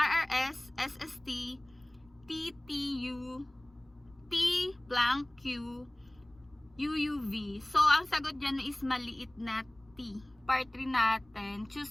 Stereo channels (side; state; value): left; noise; rumble, 29 dB below the sound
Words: SST, TTU, T blank Q, UUV. So, ang sagot dyan is maliit na T. Part 3 natin,